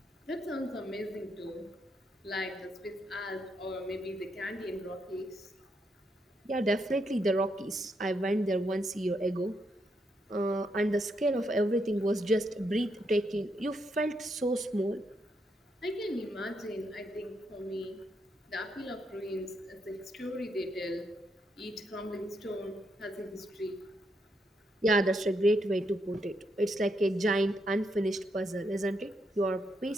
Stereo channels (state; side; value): normal; both; correlation 0.79